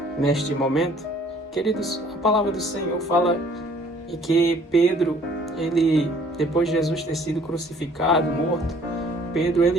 neste momento. Queridos, a palavra do Senhor fala que Pedro, depois de Jesus ter sido crucificado, morto, Pedro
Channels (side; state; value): both; normal; correlation 0.57